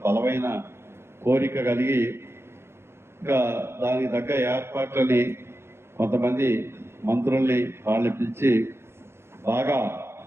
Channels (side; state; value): left; late; 0.12 ms